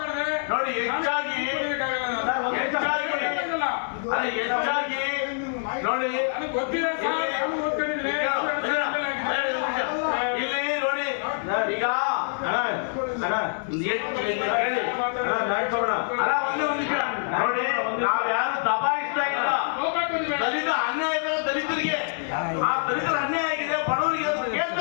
ನೋಡಿ ಹೆಚ್ಚಾಗಿ ನೋಡಿ ಗೊತ್ತಿಲ್ಲ ಇಲ್ಲಿ ನೋಡಿ ಈಗ ಒಂದು ನಿಮಿಷ ನೋಡಿ, ನಾವು ಯಾರು ದಬಾಯಿಸ್ತಾ ಇಲ್ಲ. ದಲಿತ ಅನ್ಯಾಯ ದಲಿತರಿಗೆ, ಆ ದಲಿತರ ಅನ್ಯಾಯ ಆಗಿದೆ, ಬಡವರಿಗೆ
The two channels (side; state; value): right; silent; 61 dB below the other